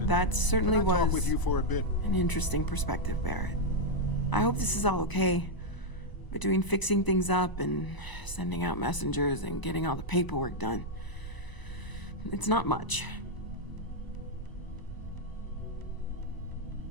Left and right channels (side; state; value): right; late; 1.0 ms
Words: that certainly Can I talk was with you for a bit? an interesting perspective, Barrett. I hope this is all okay. Between fixing things up and sending out messengers and getting all the paperwork done. It's not much.